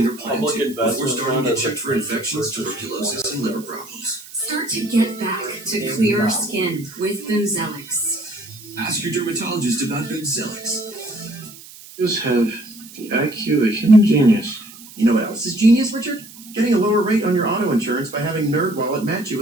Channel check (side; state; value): right; noise; hiss, 18 dB below the sound